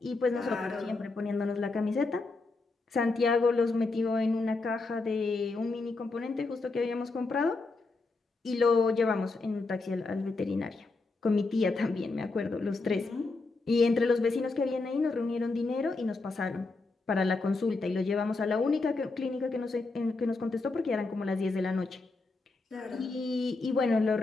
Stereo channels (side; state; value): right; quieter; 3.6 dB